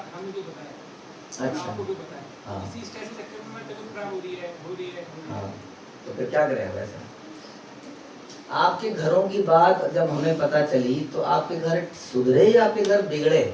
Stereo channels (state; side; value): identical; both; correlation 1.00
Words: हमें जो बताया, अच्छा, आपको भी बताया, हाँ, इसी स्ट्रेस के चक्कर में तबीयत खराब हो रही है। हाँ, तो फिर क्या करें वैसे। आपके घरों की बात जब हमें पता चली तो आपके घर सुधरे या आपके घर बिगड़े?